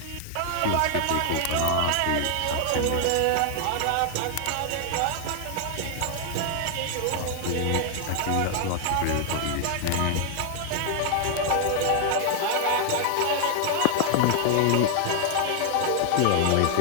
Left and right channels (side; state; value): both; different; correlation 0.00